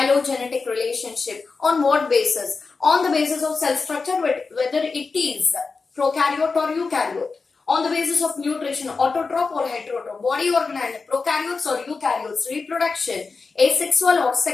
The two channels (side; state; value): right; quieter; 4.4 dB